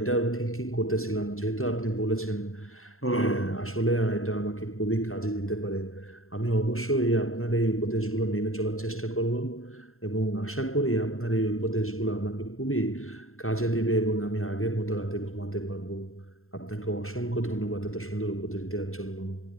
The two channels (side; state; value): right; late; 0.62 ms